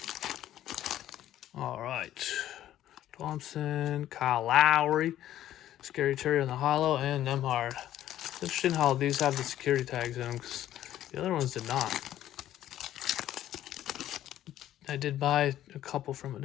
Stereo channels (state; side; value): quieter; right; 12.6 dB